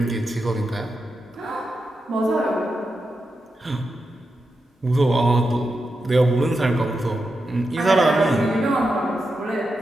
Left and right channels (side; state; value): both; normal; correlation 0.88